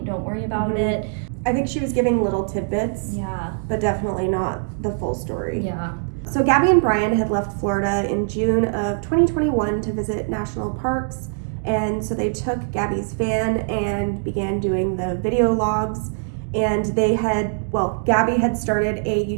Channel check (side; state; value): left; silent; digital silence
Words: Don't worry about it. I think she was giving little tidbits. Yeah. But definitely not the full story. Yeah. So Gabby and Brian had left Florida in June of 2021 to visit national parks, and so they took Gabby's van and began doing the video logs, and Gabby had started a